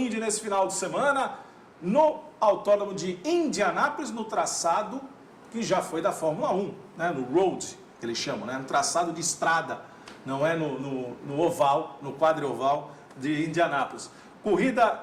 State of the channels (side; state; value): both; identical; correlation 1.00